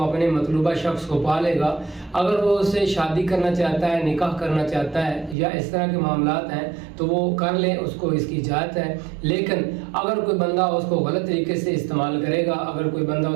اپنے مطلوبہ شخص کو پا لے گا۔ اگر وہ اس سے شادی کرنا چاہتا ہے، نکاح کرنا چاہتا ہے یا اس طرح کے معاملات ہیں تو وہ کر لے، اس کو اس کی اجازت ہے۔ لیکن اگر کوئی بندہ اس کو غلط طریقے سے استعمال کرے گا، اگر کوئی بندہ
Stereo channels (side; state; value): left; drops out; at 5.4 s